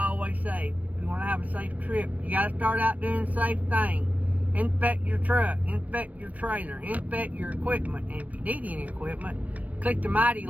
always say. If you want to have a safe trip, you got to start out doing safe things. Inspect your truck, inspect your trailer, inspect your equipment. And if you need any equipment, click the Mytee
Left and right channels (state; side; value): late; left; 0.074 ms